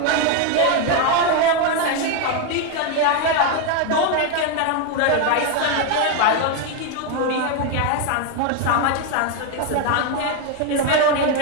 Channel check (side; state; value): both; different; correlation 0.01